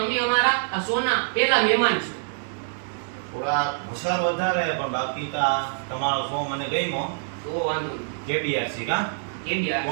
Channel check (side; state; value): left; silent; digital silence